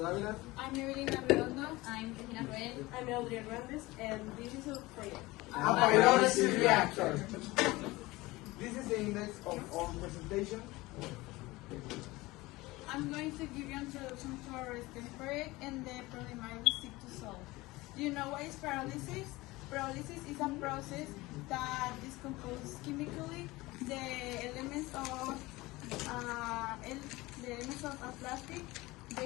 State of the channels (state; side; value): quieter; right; 20.6 dB